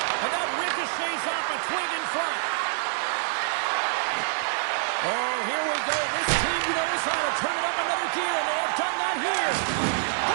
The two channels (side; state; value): left; silent; digital silence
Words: And that ricochets off a twig in front. Oh, here we go. This team knows how to turn it up another gear, and they have done that here.